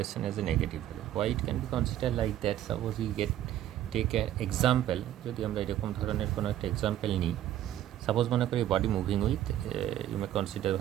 as a negative value. Why it can be considered like that? Suppose we take an example. যদি আমরা এরকম ধরনের কোনো একটা example নিই, suppose মনে করি body moving with you may consider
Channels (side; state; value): left; quieter; 12.3 dB